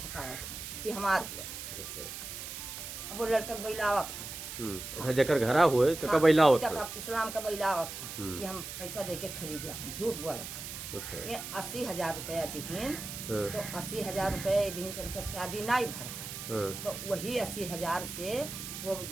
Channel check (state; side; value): noise; right; hiss, 8 dB below the sound